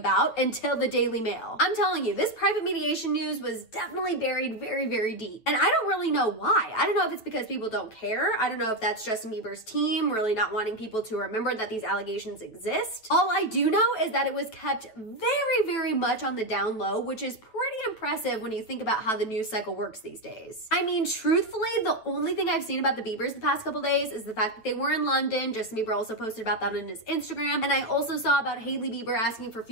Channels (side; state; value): right; late; 9.2 ms